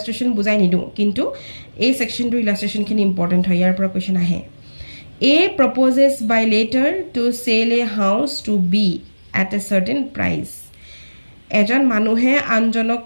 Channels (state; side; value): inverted; both; correlation -1.00